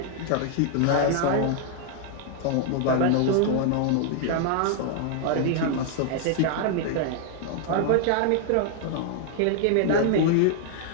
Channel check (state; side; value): different; both; correlation 0.00